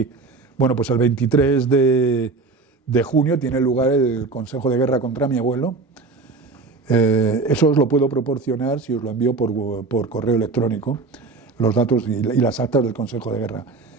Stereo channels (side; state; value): left; quieter; 3.9 dB